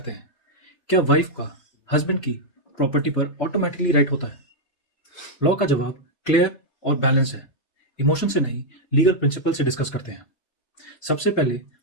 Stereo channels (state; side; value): late; right; 3.3 ms